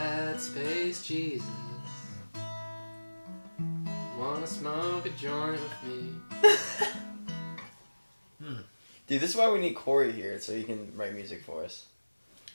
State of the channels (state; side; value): inverted; both; correlation -1.00